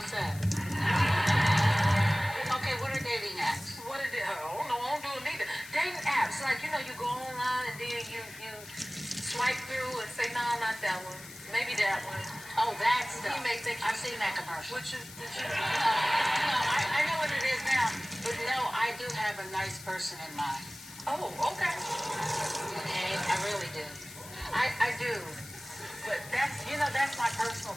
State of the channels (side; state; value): left; noise; hiss, 16 dB below the sound